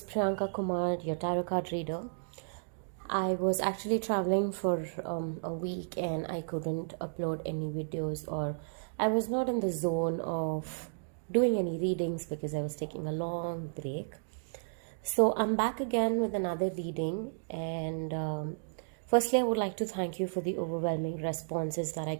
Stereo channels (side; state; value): left; silent; digital silence